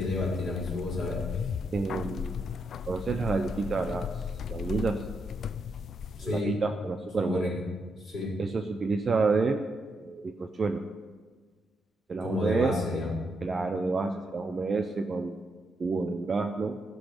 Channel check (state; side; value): normal; both; correlation 0.80